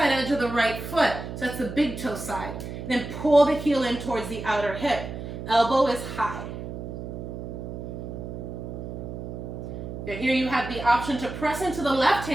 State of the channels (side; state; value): right; noise; hum, 8 dB below the sound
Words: edge of the right foot. So that's the big toe side. Then pull the heel in towards the outer hip. Elbow is high. Now here you have the option to press into the left